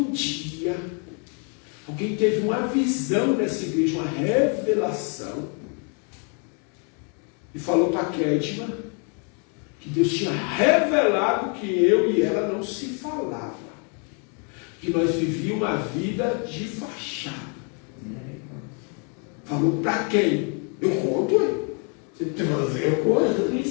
dia alguém teve uma visão nessa igreja, uma revelação, e falou para a Kedma que Deus tinha revelado que eu e ela não se falava, que nós vivíamos uma vida de fachada. Falou para quem? Eu conto, hein? Você tem que fazer, eu conto. Eu estou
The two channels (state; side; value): quieter; right; 38.7 dB